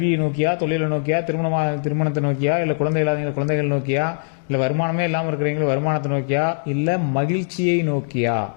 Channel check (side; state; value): right; silent; digital silence